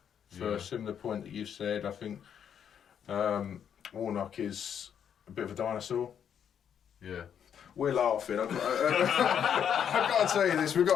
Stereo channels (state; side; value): quieter; right; 8.4 dB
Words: For a similar point that you've said, I think Warnock is a bit of a dinosaur. Yeah. We're laughing. I've got to tell you this. We've